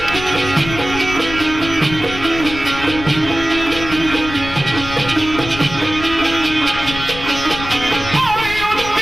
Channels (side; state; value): left; noise; rumble, 11 dB below the sound